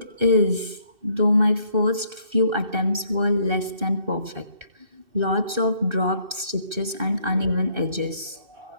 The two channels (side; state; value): left; late; 2.6 ms